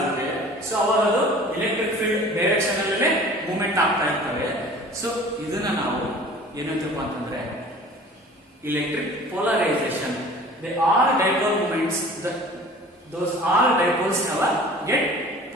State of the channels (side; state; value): both; normal; correlation 0.45